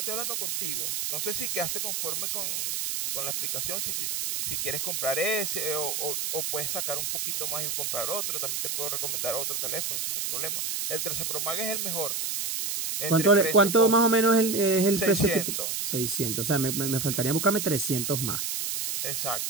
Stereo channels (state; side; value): noise; right; hiss, 1 dB below the sound